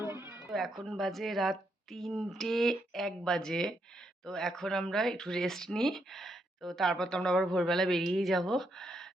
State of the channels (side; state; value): both; normal; correlation 0.78